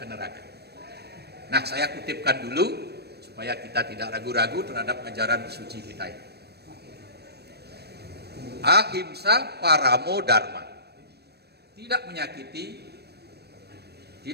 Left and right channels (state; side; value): late; left; 0.47 ms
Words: neraka. Nah, saya kutipkan dulu supaya kita tidak ragu-ragu terhadap ajaran suci kita ini. Ahimsa paramo dharma. Tidak menyakiti,